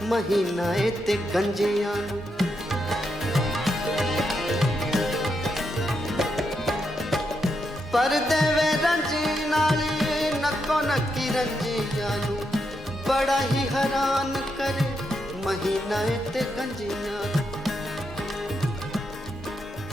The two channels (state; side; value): normal; both; correlation 0.82